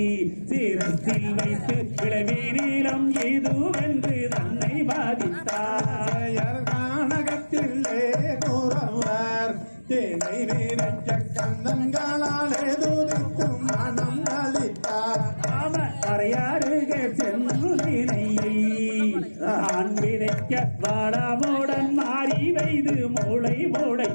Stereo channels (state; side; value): inverted; both; correlation -1.00